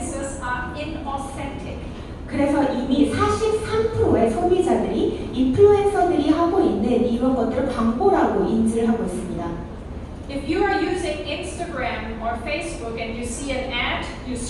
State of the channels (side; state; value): both; identical; correlation 1.00